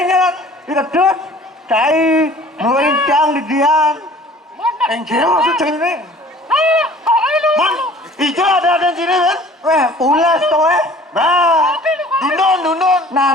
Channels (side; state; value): both; normal; correlation 0.48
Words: kedut, cai, melincang di dian. Enggak maksud ini. Hijau ada di sini kan? Ulas tuh Dundun.